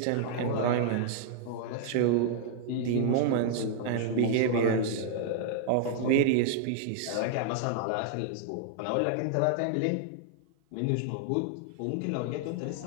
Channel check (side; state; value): both; different; correlation -0.01